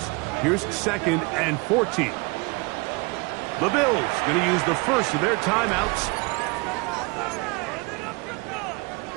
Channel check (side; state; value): left; quieter; 27.8 dB